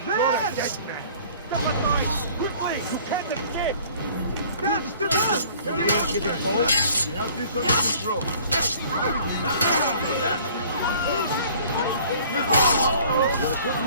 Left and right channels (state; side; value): inverted; both; correlation -0.52